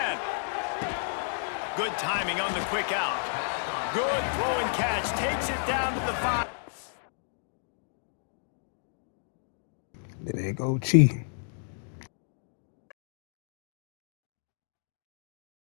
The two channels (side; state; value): right; silent; digital silence